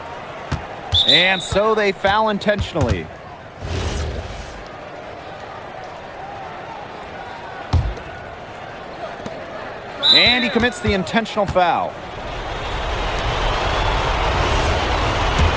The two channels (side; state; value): both; identical; correlation 1.00